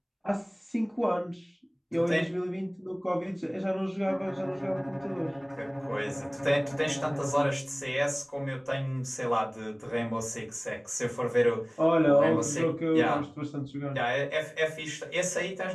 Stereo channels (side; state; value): both; identical; correlation 1.00